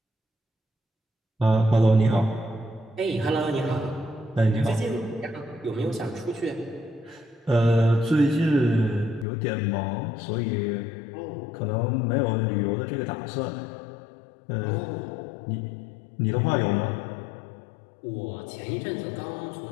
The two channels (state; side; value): drops out; right; at 9.2 s